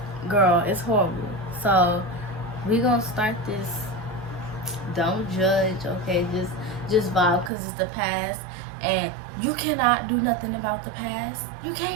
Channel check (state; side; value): drops out; left; at 7.5 s